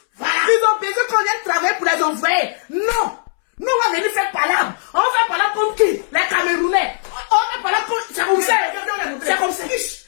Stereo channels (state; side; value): silent; right; 67 dB below the other